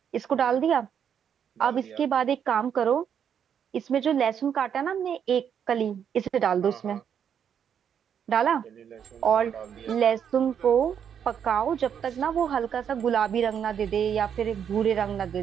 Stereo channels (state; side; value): quieter; left; 8.3 dB